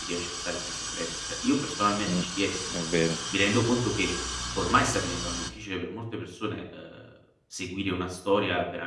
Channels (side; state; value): both; identical; correlation 1.00